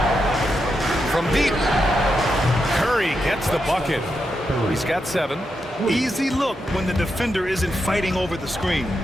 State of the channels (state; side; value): normal; both; correlation 0.85